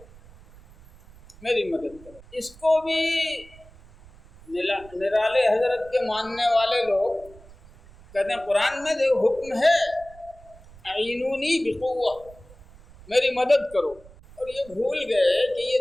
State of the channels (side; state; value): right; noise; rumble, 23 dB below the sound